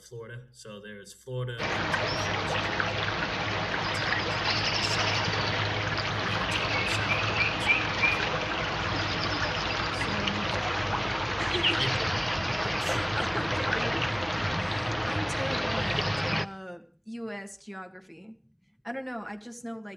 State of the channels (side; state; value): both; identical; correlation 1.00